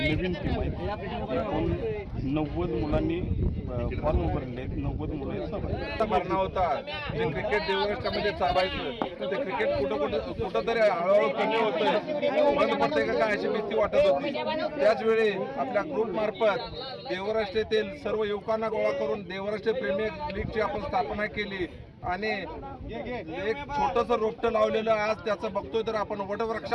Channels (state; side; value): identical; both; correlation 1.00